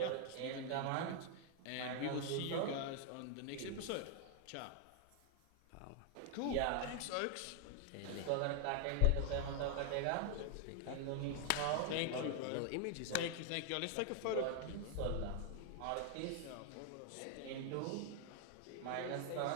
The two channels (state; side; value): different; both; correlation 0.00